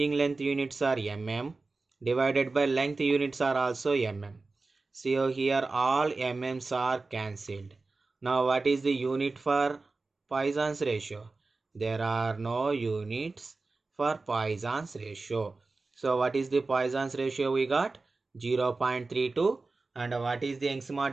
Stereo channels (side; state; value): left; quieter; 3.7 dB